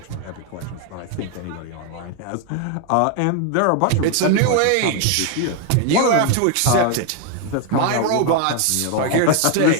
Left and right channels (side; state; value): both; different; correlation 0.01